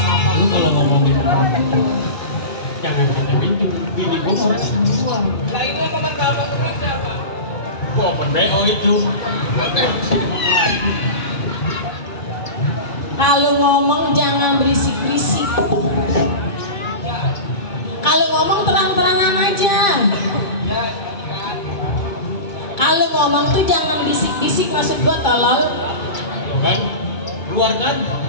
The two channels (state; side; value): late; right; 2.3 ms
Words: Lu kalau ngomongin jangan sampai bini gua orang jual. Lah ini yang komentar apa duitnya, Pak? Gua open BO itu. Kalau ngomong jangan berisik-berisik. Kalau ngomong terang-terangan aja. Kalau ngomong tuh jangan bisik-bisik, maksud gua tolol. Tuh kan? Keluar kan?